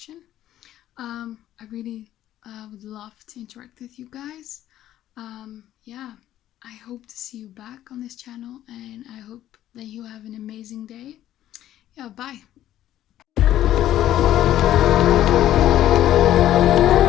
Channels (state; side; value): quieter; right; 12.7 dB